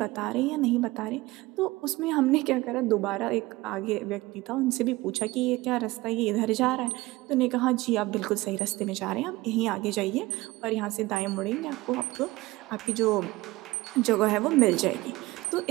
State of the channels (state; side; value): quieter; left; 20.1 dB